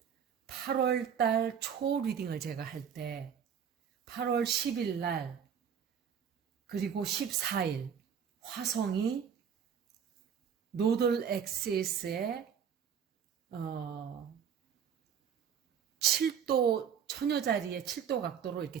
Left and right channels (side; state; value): left; quieter; 7.8 dB